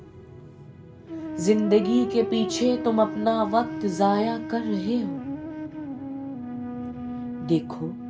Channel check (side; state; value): both; identical; correlation 1.00